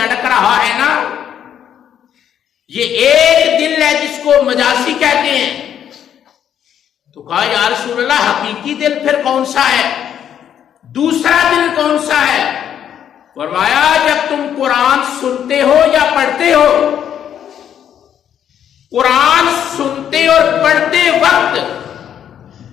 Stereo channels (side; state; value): right; quieter; 9.5 dB